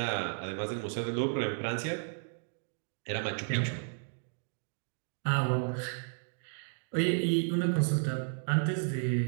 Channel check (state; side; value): silent; left; 56 dB below the other